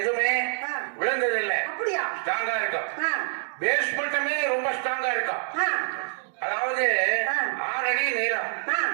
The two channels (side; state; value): left; silent; digital silence